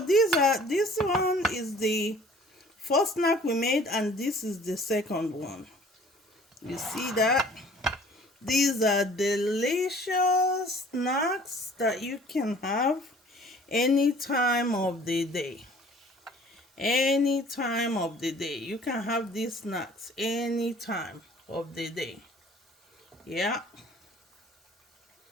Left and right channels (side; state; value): both; normal; correlation 0.51